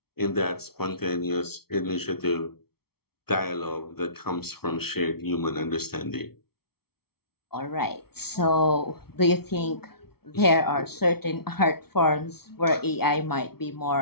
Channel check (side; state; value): right; late; 0.95 ms